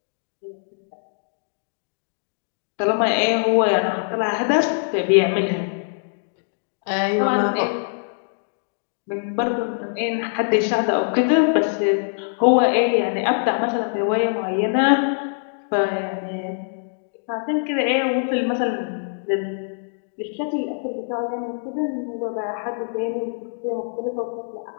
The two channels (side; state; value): right; silent; digital silence